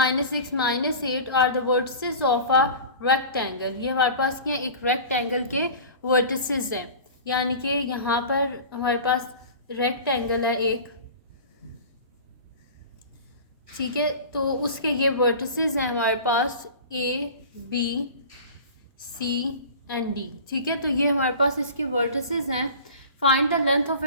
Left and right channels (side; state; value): both; inverted; correlation -0.37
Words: -8 are the vertices of a rectangle. ये हमारे पास क्या है, एक रेक्टेंगल के वर्टिसेस हैं, यानी कि यहाँ पर हमारे पास रेक्टेंगल है एक, ठीक है। तो उसके ये वर्टिसेस हैं हमारे पास A B C and D, ठीक है। तो ये हमारे पास इसके वर्टिसेस हैं। Find the length of